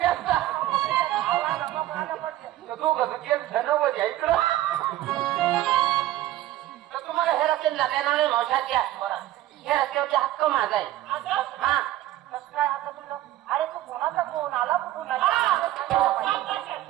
दोघं जण होत्या इकडं तर तुम्हाला हे रस्त्याने जाता येणार नाही मावशाच्या हे रस्त्यावरती हक्क माझा आहे हा कसं काय हक्क तुझं अरे तू कोणाचा फोन आला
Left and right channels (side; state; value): left; quieter; 14.4 dB